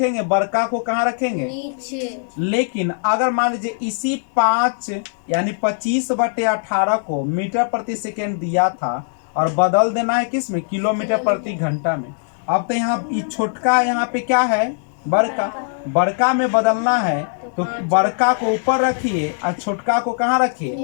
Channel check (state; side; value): silent; right; digital silence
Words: बड़का को कहाँ रखेंगे? नीचे। लेकिन अगर मान लीजिए इसी 5 यानी 25/18 को मीटर प्रति सेकेंड दिया था और बदल देना है किस में? किलोमीटर प्रति घंटा में। अब तो यहाँ छोटका यहाँ पे क्या है? बड़का में बदलना है, तो बड़का को ऊपर रखिए और छोटका को कहाँ